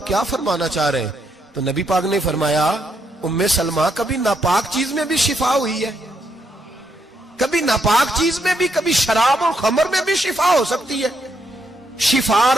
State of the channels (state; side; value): normal; both; correlation 0.77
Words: क्या फरमाना चाह रहे हैं? तो नबी पाक ने फरमाया उम्मे सलमा कभी नापाक चीज में भी शिफा हुई है, कभी नापाक चीज में भी, कभी शराब और खमर में भी शिफा हो सकती है। शिफा